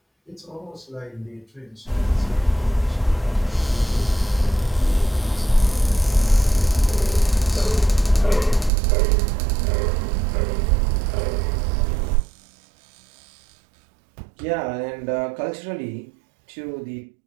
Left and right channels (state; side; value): drops out; left; at 8.7 s